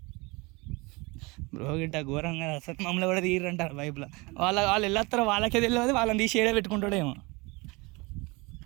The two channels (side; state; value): left; quieter; 25.8 dB